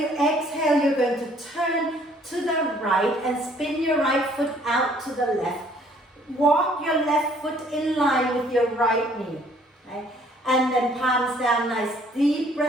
exhale, you're going to turn to the right and spin your right foot out to the left. Walk your left foot in line with your right knee. Okay? And then palms down, nice deep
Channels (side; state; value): both; normal; correlation 0.60